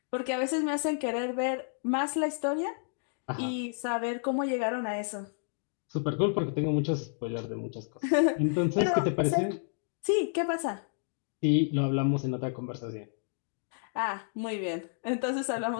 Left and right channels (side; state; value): right; silent; digital silence